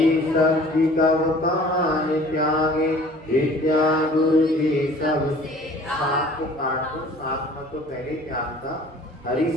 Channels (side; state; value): both; normal; correlation 0.49